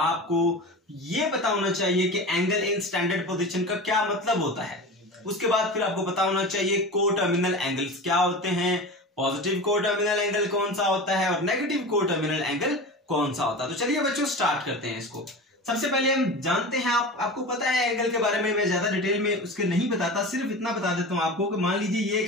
ये पता होना चाहिए कि एंगल इन स्टैंडर्ड पोजीशन का क्या मतलब होता है। उसके बाद फिर आपको पता होना चाहिए कोटर्मिनल एंगल्स क्या होते हैं, पॉजिटिव कोटर्मिनल एंगल कौन सा होता है और नेगेटिव कोटर्मिनल एंगल कौन सा होता है। तो चलिए बच्चों स्टार्ट करते हैं इसको। सबसे पहले हम जानते हैं, आपको पता है एंगल के बारे में, मैं ज्यादा डिटेल में उसके नहीं बताता, सिर्फ इतना बता देता हूं आपको कि मान लीजिए ये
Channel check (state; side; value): normal; both; correlation 0.30